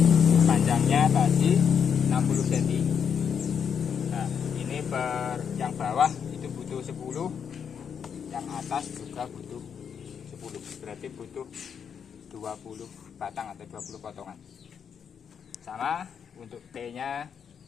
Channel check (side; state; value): right; quieter; 7.3 dB